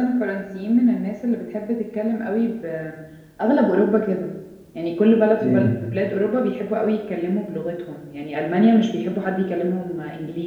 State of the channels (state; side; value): identical; both; correlation 1.00